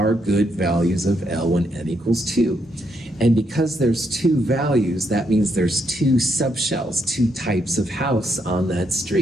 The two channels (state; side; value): normal; both; correlation 0.77